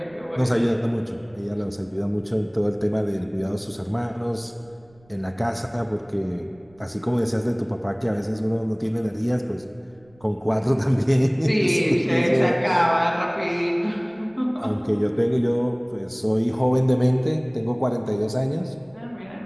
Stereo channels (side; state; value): right; noise; rumble, 30 dB below the sound